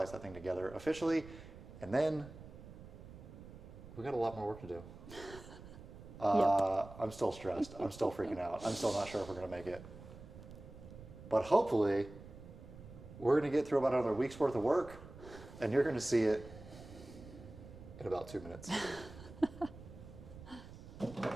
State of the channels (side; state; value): right; noise; rumble, 15 dB below the sound